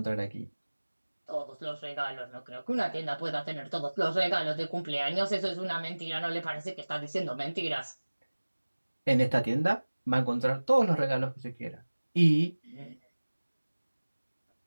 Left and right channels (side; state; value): both; inverted; correlation -1.00